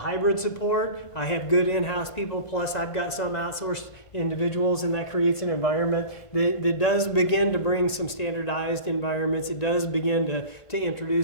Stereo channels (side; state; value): right; late; 1.5 ms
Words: support. I have good in-house people, plus I've got some outsourced individuals, and that creates an environment that does begin to bring some standardized environments. It does begin to